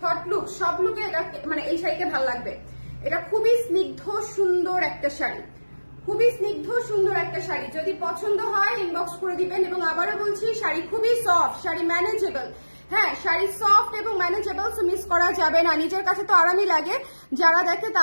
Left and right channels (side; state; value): both; inverted; correlation -1.00